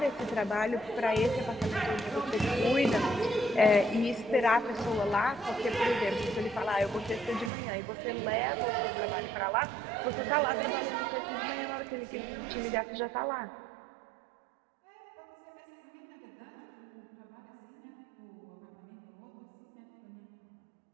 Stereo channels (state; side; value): drops out; left; at 7.5 s